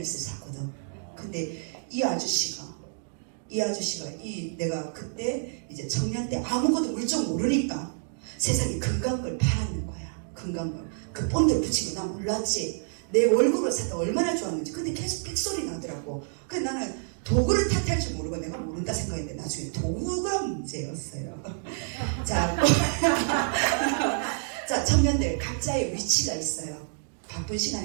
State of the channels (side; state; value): left; silent; digital silence